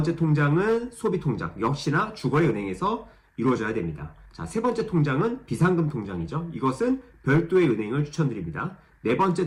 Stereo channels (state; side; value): identical; both; correlation 1.00